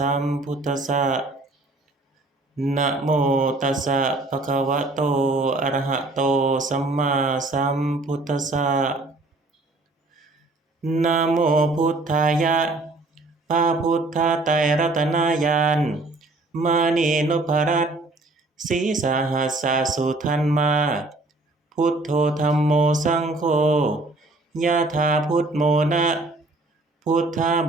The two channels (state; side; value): quieter; left; 3.0 dB